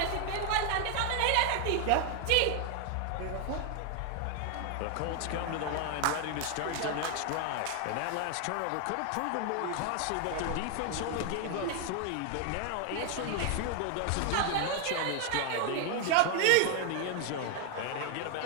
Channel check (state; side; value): different; both; correlation 0.00